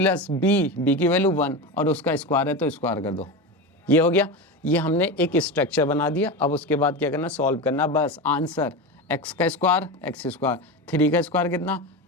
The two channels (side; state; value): both; normal; correlation 0.21